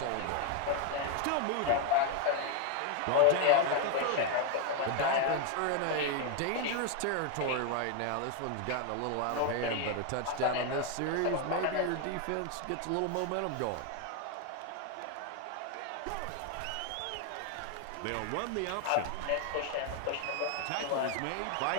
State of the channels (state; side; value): different; both; correlation 0.01